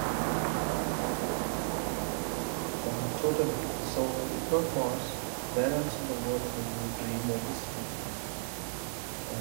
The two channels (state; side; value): silent; left; digital silence